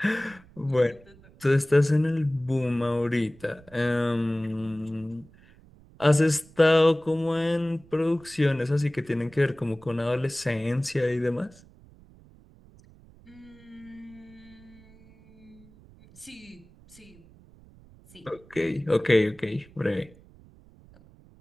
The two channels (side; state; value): right; noise; rumble, 25 dB below the sound